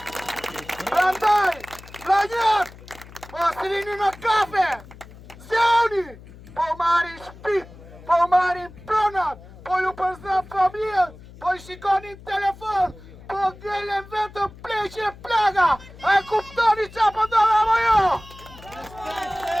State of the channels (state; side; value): noise; left; hum, 19 dB below the sound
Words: Prandaj, vllajat, mos rini në kafe, zjauni, po marrin shtëpit, po marrin pronat, po ju përzën familjen, po i shikonin telefon, po ngelen vetëm pleqe plaga, a e kuptoni qa po ndodh apo jo?